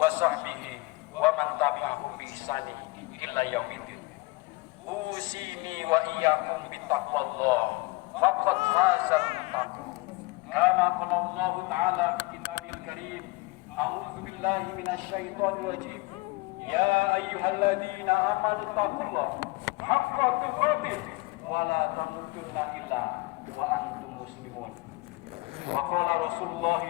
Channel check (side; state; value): right; quieter; 23.1 dB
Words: ومن تبعهم بإحسان إلى يوم الدين أوصيني وإياكم بتقوى الله فقد فاز المتقون كما قال الله تعالى في كتابه الكريم أعوذ بالله من الشيطان الرجيم يا أيها الذين آمنوا اتقوا الله حق تقاته ولا تموتن إلا وأنتم مسلمون وقال رسول الله